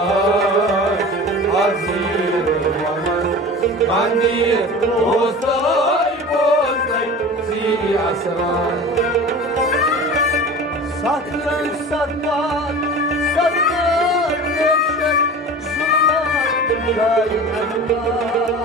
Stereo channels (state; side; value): normal; both; correlation 0.36